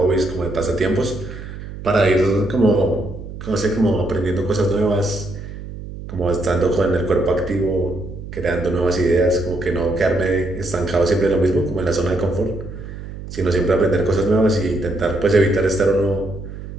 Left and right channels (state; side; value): noise; right; hum, 11 dB below the sound